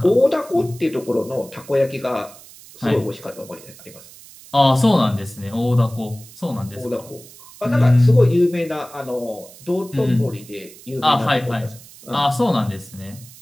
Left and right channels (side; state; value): right; noise; hiss, 20 dB below the sound